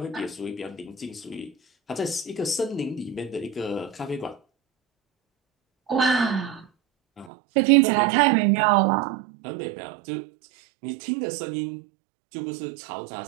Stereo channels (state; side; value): drops out; left; at 7.3 s